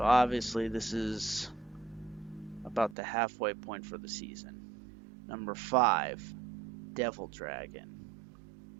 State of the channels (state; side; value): drops out; left; at 3.0 s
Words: obviously this is about the halfway point for the season. Number 5, Devil Dragon.